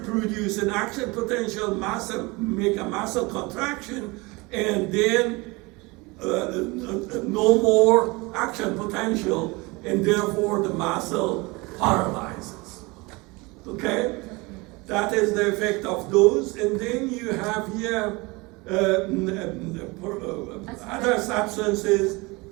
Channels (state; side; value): quieter; left; 24.9 dB